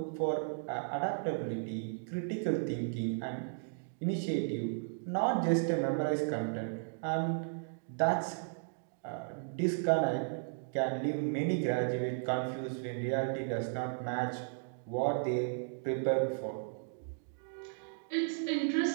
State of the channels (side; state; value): left; silent; digital silence